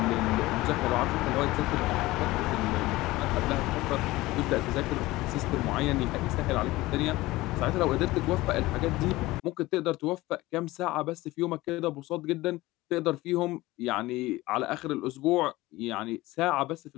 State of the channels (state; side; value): quieter; right; 19.0 dB